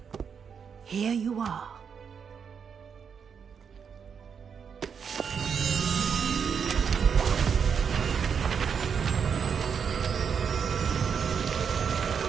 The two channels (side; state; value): left; quieter; 6.8 dB